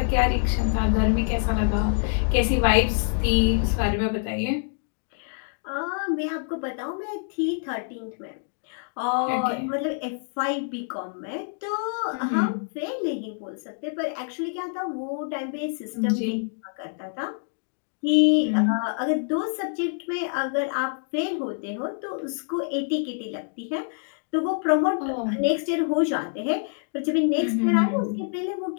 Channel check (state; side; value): silent; right; 61 dB below the other